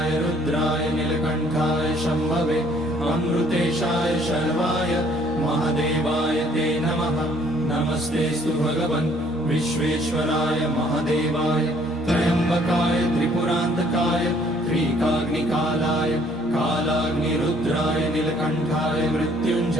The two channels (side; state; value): both; normal; correlation 0.61